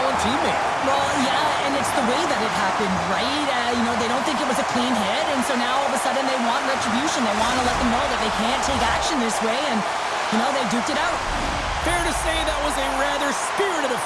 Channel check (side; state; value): both; identical; correlation 1.00